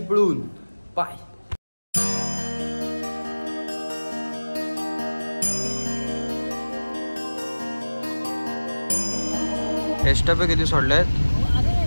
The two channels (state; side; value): inverted; both; correlation -1.00